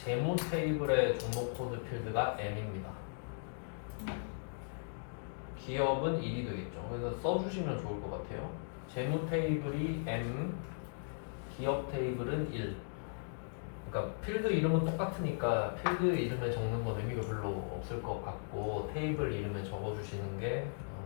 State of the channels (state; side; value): silent; right; digital silence